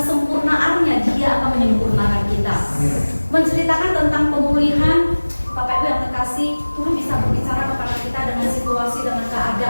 Dia akan menyempurnakan kita. Menceritakan tentang pemulihan, Bapak Ibu yang terkasih, Tuhan bisa berbicara kepada kita dengan situasi, dengan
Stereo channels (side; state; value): both; inverted; correlation -1.00